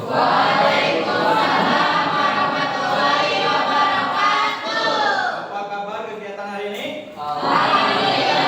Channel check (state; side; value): identical; both; correlation 1.00